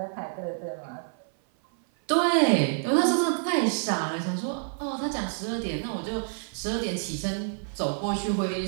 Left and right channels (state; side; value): silent; left; 55 dB below the other